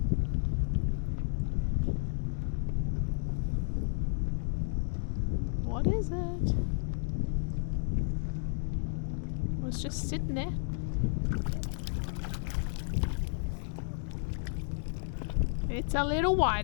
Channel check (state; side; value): silent; right; digital silence